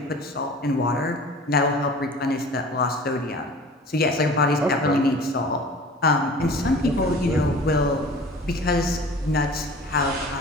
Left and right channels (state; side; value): normal; both; correlation 0.43